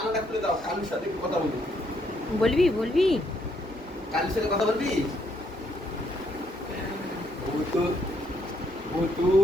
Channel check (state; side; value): normal; both; correlation 0.72